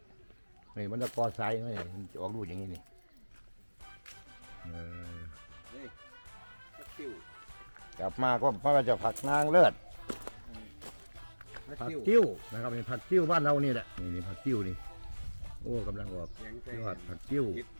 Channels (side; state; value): both; inverted; correlation -1.00